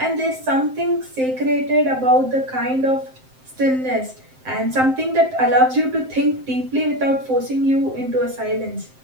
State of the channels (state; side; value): late; left; 7.7 ms